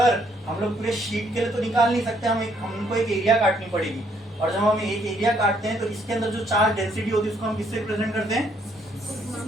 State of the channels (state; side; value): normal; both; correlation 0.69